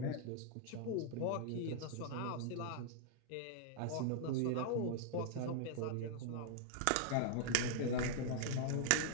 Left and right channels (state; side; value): different; both; correlation -0.01